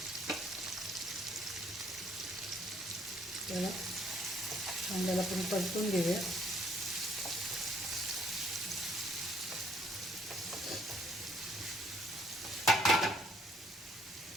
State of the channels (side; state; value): both; normal; correlation 0.65